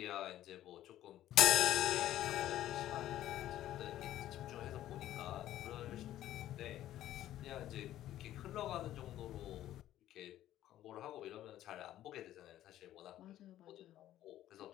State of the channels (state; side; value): quieter; right; 13.1 dB